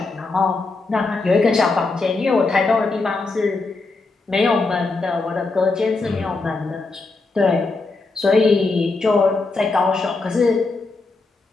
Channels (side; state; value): right; quieter; 3.6 dB